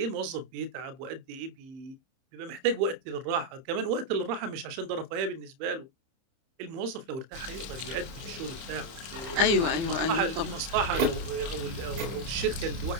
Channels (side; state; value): left; late; 30 ms